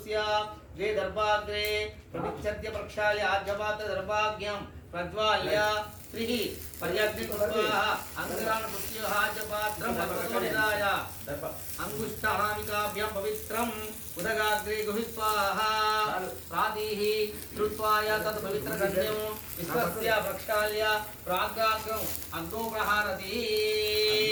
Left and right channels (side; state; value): both; identical; correlation 1.00